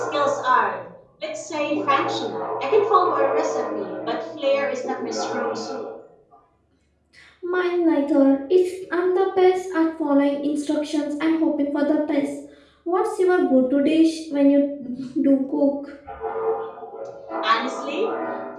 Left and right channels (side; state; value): both; identical; correlation 1.00